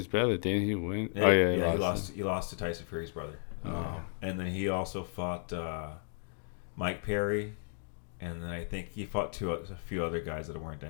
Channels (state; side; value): silent; right; 55 dB below the other